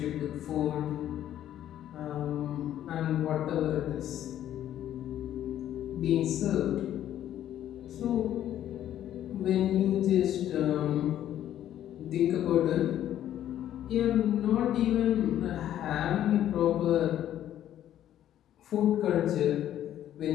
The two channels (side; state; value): right; quieter; 11.6 dB